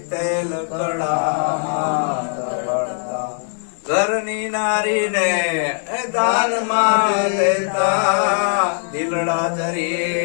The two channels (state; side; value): silent; right; digital silence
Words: તેલ કડામાં તળતા. ઘરની નારીને દાનમાં દેતા, દિલડા